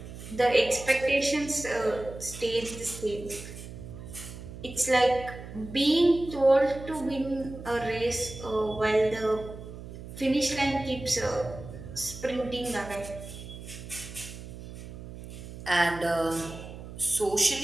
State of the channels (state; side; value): noise; right; hum, 12 dB below the sound